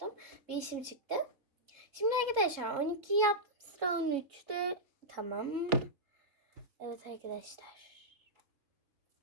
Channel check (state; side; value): late; left; 3.8 ms